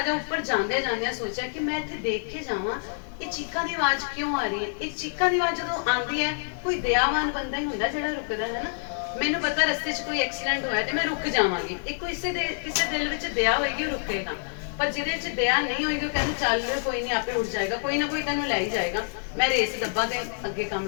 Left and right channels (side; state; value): right; silent; digital silence